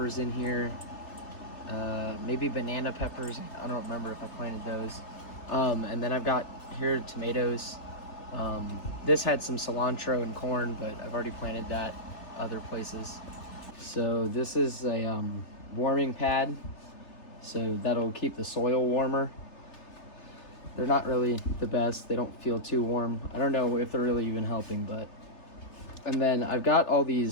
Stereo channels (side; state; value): right; late; 3.3 ms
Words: in here. Maybe banana peppers. I don't remember if I planted those. And then I've got here tomatoes. This had some cilantro and corn, but I've already planted that other places. So this is a warming pad, so that'll keep the soil warmer. They're not really the best. They don't feel too warm. I don't know if they're really even helping, but. And then I've got all